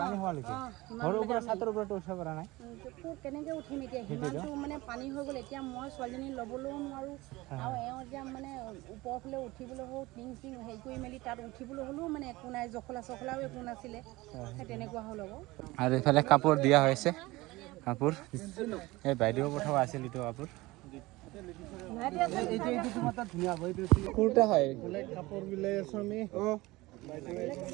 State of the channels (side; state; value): left; quieter; 20.4 dB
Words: হোৱালৈকে ঘৰৰ ওপৰত ছাতৰ ওপৰতো উঠিব পৰা নাই। কেনেকৈ উঠিম এতিয়া, সিমানটো মানে পানী হৈ গ'ল। এতিয়া মই ছোৱালীজনী ল'বলৈও নোৱাৰোঁ, আৰু এওঁ এতিয়া মানে ওপৰৰ ফালে উঠিবলৈ হ'ল, টিং চিং হেৰি কৰি মেলি তাত উঠিবলৈ হ'লেও মানে একো নাই, জখলা চখলাও একো নাছিলে, সেই তেনেকুৱা হ'ল আকৌ। আৰু এইফালে কাপোৰ দিয়া হৈছে, কাপোৰ এই বাইদেউ পঠোৱা আছিল এইটো কাপোৰ। কুৰ্তা হয় কাপোৰ বিলাই আছো আমি।